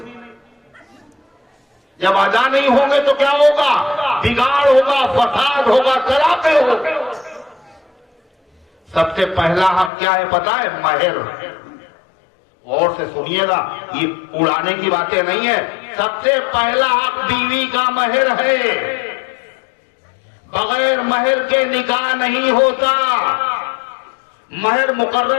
جب ادا نہیں ہوں گے تو کیا ہوگا؟ بگاڑ ہوگا، فساد ہوگا، طلاقیں ہوگی۔ سب سے پہلا حق کیا ہے پتہ ہے؟ مہر۔ غور سے سنیے گا، یہ اڑانے کی باتیں نہیں ہے۔ سب سے پہلا حق بیوی کا مہر ہے، بغیر مہر کے نکاح نہیں ہوتا۔ مہر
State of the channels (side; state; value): right; drops out; at 9.9 s